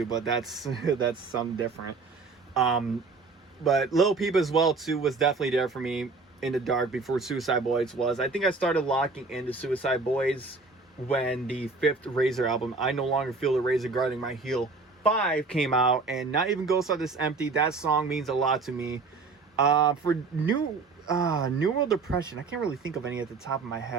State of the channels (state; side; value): quieter; left; 4.1 dB